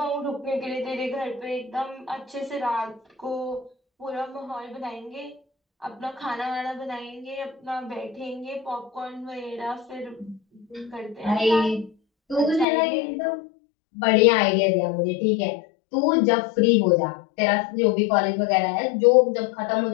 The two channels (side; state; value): right; drops out; at 12.7 s